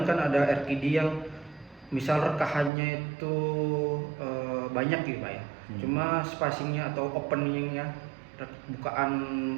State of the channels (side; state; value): left; drops out; at 2.7 s